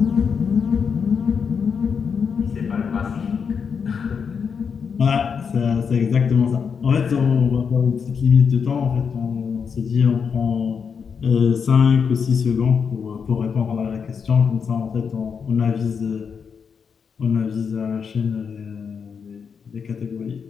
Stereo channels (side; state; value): right; quieter; 6.3 dB